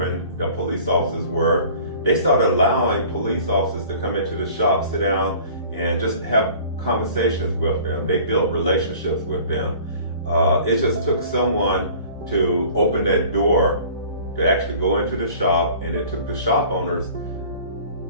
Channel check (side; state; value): both; inverted; correlation -0.47